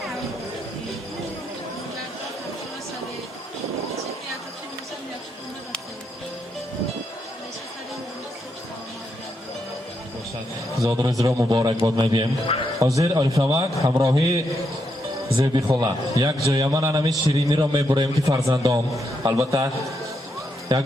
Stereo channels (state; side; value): normal; both; correlation 0.80